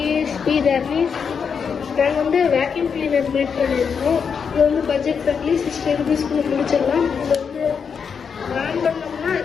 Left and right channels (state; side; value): quieter; right; 6.4 dB